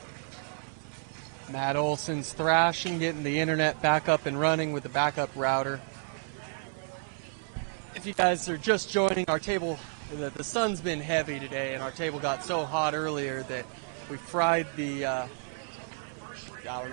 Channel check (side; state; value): left; silent; 57 dB below the other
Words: Matt Olson's thrashing, getting the internet back up and running with the backup router. If you guys are just joining our table, the sun's been heavy today, and our table got so hot earlier that we fried the, I don't